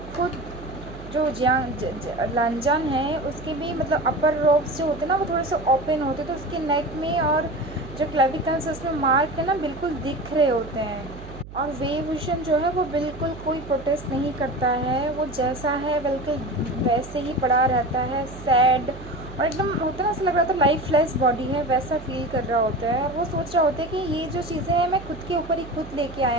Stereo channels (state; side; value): noise; right; hum, 15 dB below the sound